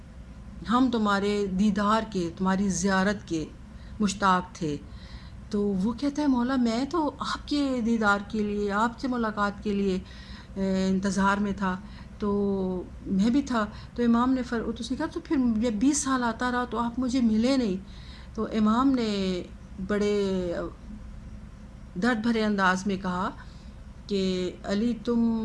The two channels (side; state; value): both; identical; correlation 1.00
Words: ہم تمہارے دیدار کے، تمہاری زیارت کے مشتاق تھے۔ تو وہ کہتا ہے مولا میں تو آپ کے دیدار کے لیے، آپ سے ملاقات کے لیے انتظار میں تھا، تو میں بھی تھا۔ تو امام نے اس نے کہا تو پھر جب 20 سال آتا رہا تو آپ مجھے ملے نہیں۔ تو امام نے بڑے درد بھرے انداز میں کہا کہ علی